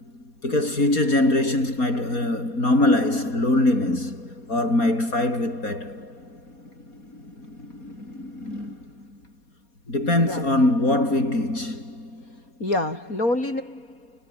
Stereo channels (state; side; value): late; right; 4.2 ms